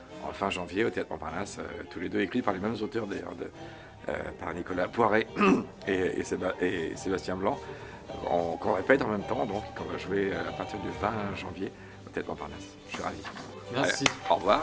en fin janvier au Théâtre Montparnasse, tous les deux écrits par les mêmes auteurs d'ailleurs, par Nicolas Poiret et Sébastien Blanc, qu'on répète en même temps, donc qu'on va jouer à partir du 20 janvier au Théâtre Montparnasse. Je suis ravi. Merci. Allez, au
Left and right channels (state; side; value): identical; both; correlation 1.00